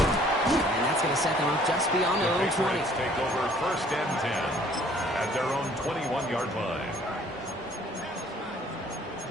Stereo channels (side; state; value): both; normal; correlation 0.57